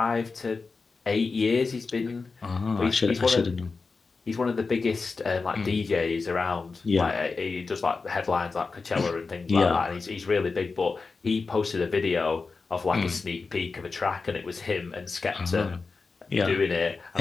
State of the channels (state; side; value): quieter; right; 4.3 dB